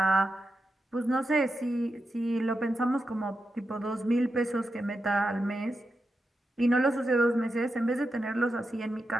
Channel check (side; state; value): both; normal; correlation 0.88